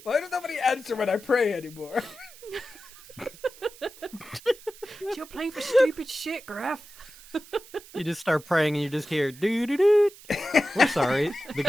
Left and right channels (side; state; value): right; noise; hiss, 20 dB below the sound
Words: Why does nobody answer when I pray anymore? You're playing for stupid shit, Graf. You just start praying and you just hear doo doo doo. We're sorry. The